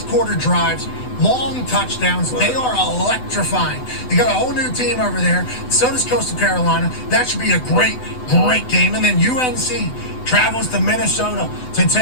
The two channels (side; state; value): right; late; 8.0 ms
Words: quarter drives, long touchdowns. They are electrifying. They got a whole new team over there. So does Coastal Carolina. That should be a great game. And then UNC travels to Minnesota to